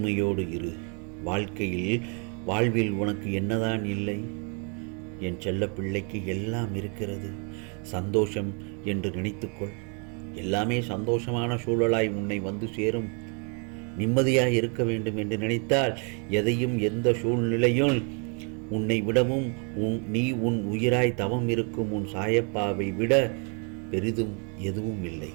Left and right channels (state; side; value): quieter; left; 37.7 dB